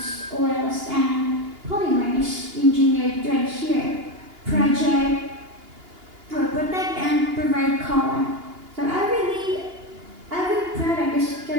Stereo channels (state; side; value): late; left; 2.8 ms